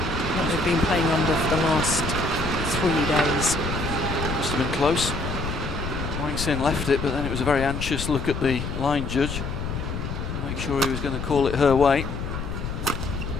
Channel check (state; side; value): noise; left; rumble, 5 dB below the sound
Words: what they've been playing under for the last 3 days. Must have been close. Wang Xin left it, but then it was a very anxious look at the line judge. Make sure he was going to call it her way.